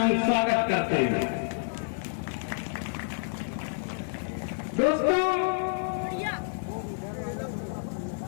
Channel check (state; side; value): silent; right; 59 dB below the other